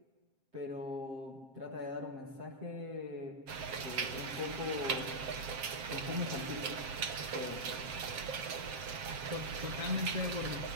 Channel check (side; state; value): left; late; 7.5 ms